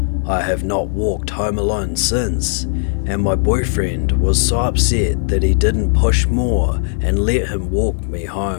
I have not walked home alone since, and my boyfriend was so upset that he didn't push more and let him walk me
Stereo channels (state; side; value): silent; right; digital silence